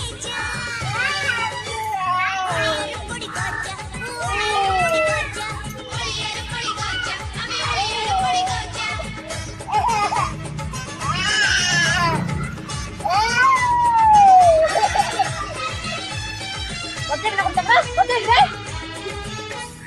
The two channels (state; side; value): identical; both; correlation 1.00